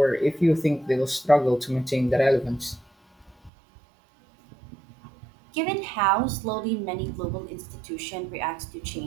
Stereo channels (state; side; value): drops out; left; at 3.5 s